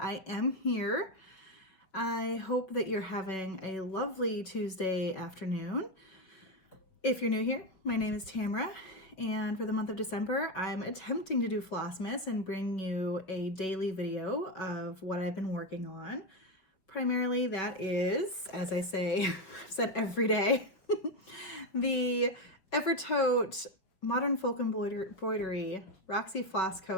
I am here. I hope that you're having a lovely Tuesday afternoon. If you're new here, my name is Tamara, and for the month of December, I'm attempting to do FLOSSMAS and bring you a daily video of what I've been working on. Primarily that is, as I say, I've said every day, the Evertote Modern Folk Embroidery Roxy Floss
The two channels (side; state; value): right; late; 5.6 ms